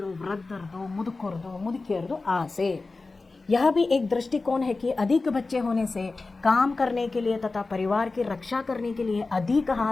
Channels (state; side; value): quieter; right; 3.6 dB